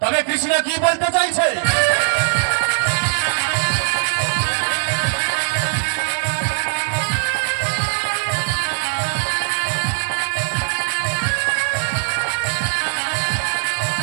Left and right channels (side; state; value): left; silent; 60 dB below the other